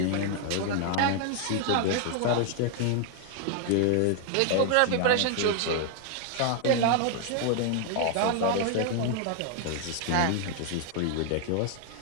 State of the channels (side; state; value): both; different; correlation 0.00